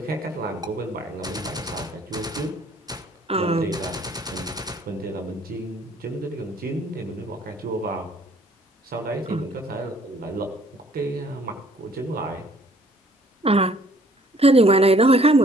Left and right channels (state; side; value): normal; both; correlation 0.59